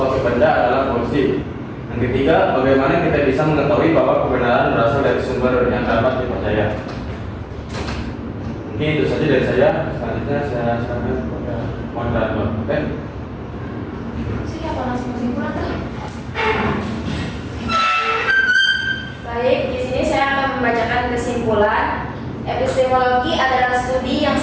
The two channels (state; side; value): identical; both; correlation 1.00